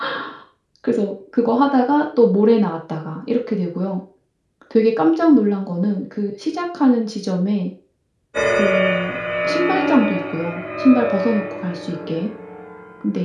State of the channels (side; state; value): both; identical; correlation 1.00